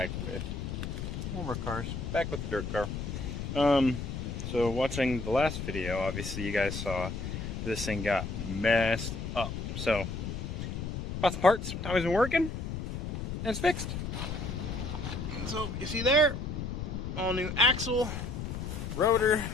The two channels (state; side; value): noise; left; rumble, 5 dB below the sound